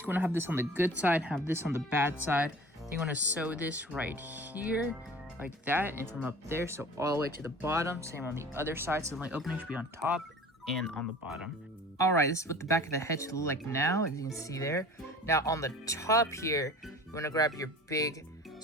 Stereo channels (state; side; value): normal; both; correlation 0.42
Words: you want to have this on the good side, have this on the bad side. Then you want to sew this right here, like that, and from up there, so all the way to the bottom. Same on the other side, so the opening should be on top and on the bottom. Alright, this is what the back of the head should look like now, as you can see there. Now on the top here, you want to grab your big